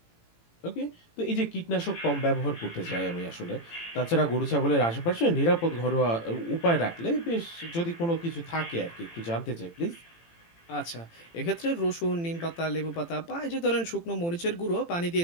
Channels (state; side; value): late; right; 18 ms